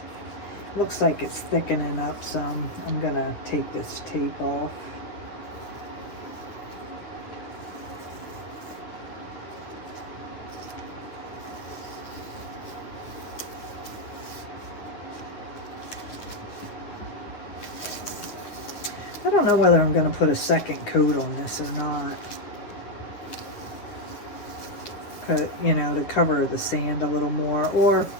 Looks like it's thickening up some. I'm gonna take this tape off. I don't know whether I'm gonna put a second coat on this or not. You know, to cover the sand a little more, or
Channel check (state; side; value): late; right; 10 ms